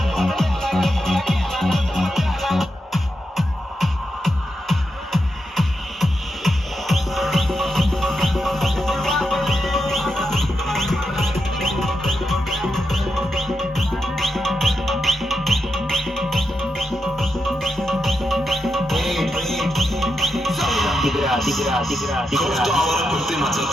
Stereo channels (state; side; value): normal; both; correlation 0.85